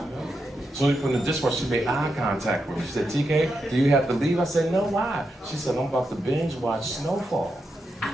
So we put in the dishwasher, she made eye contact with me. She said, TK, do you have to leave? I said, no, why? She said, I'm about to binge watch Snowfall.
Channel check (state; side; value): normal; both; correlation 0.85